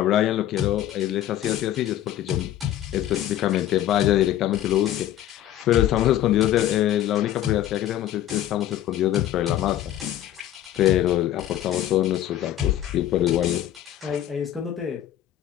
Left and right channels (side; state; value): right; quieter; 12.4 dB